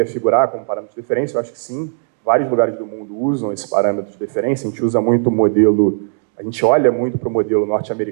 figurar como parâmetro de deferência, eu acho que sim. Vários lugares do mundo usam esse parâmetro de deferência. A gente usa muito o modelo, a gente olha muito para o modelo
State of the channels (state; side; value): silent; left; digital silence